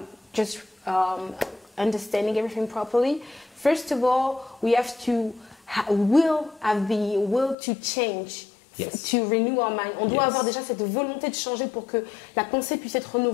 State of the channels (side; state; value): right; drops out; at 7.6 s